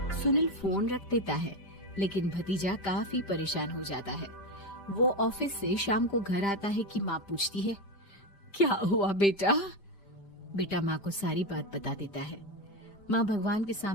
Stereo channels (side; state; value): right; late; 5.1 ms